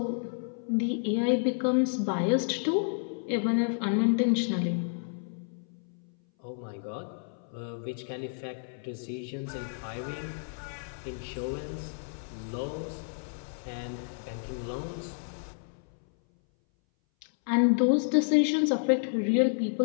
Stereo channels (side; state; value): right; silent; 57 dB below the other